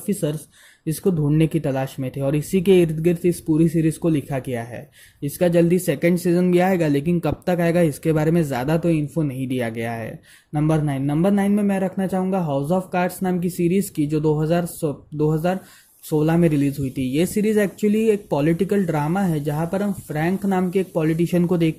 इसको ढूंढने की तलाश में थे, और इसी के इर्द गिर्द इस पूरी सीरीज को लिखा गया है। इसका जल्दी 2nd सीजन भी आएगा, लेकिन कब तक आएगा इसके बारे में ज़्यादा तो इन्फो नहीं दिया गया है। नंबर 9 में मैं रखना चाहूँगा हाउस ऑफ कार्ड्स नाम की सीरीज़ की, जो 2016 में रिलीज हुई थी। ये सीरीज एक्चुअली एक पॉलिटिकल ड्रामा है, जहाँ पर हम फ्रैंक नाम के एक पॉलिटिशियन को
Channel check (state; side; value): identical; both; correlation 1.00